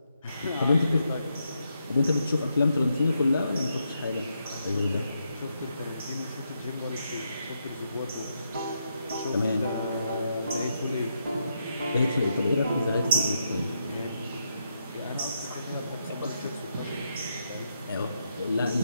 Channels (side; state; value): both; inverted; correlation -0.81